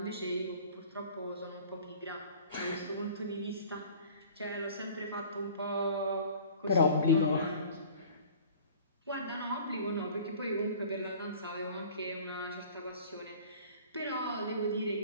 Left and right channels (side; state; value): both; inverted; correlation -0.46